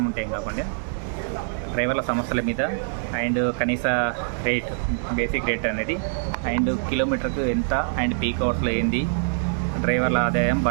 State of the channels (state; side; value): silent; left; digital silence